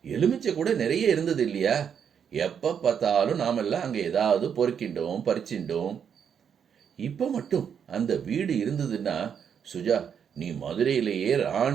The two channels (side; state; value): left; quieter; 7.7 dB